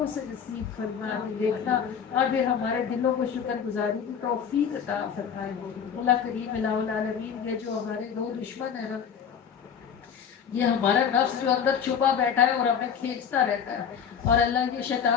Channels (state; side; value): quieter; right; 7.5 dB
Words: سے نصیب فرمائے دیکھنا، اور پھر ہمارے دلوں کو شکر گزاری کی توفیق عطا فرمائے۔ اللہ کریم الہ العالمین یہ جو ہمارے دو دشمن ہیں نا، یہ ہمارا نفس جو اندر چھپا بیٹھا ہے اور ہمیں کھینچتا رہتا ہے، اور اللہ یہ